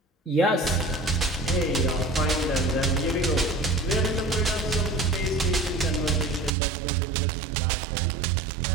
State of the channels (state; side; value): drops out; left; at 6.5 s